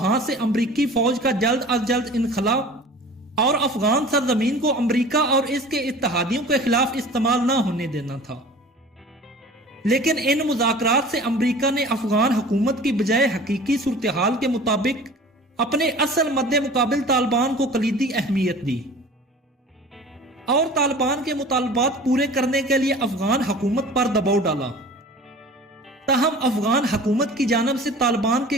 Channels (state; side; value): normal; both; correlation 0.42